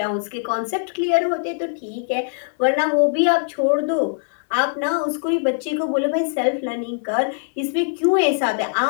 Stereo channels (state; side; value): silent; right; digital silence